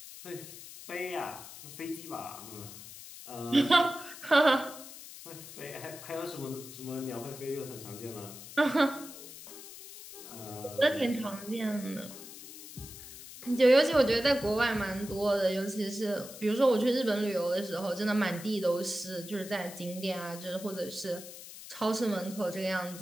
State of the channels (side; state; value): left; noise; hiss, 14 dB below the sound